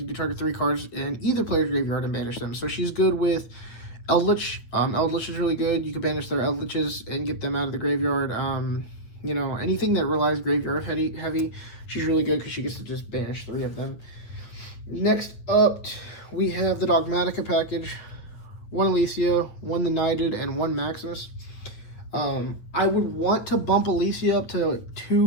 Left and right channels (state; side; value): late; right; 8.7 ms